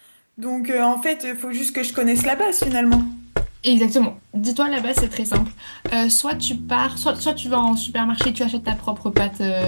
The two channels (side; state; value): both; inverted; correlation -1.00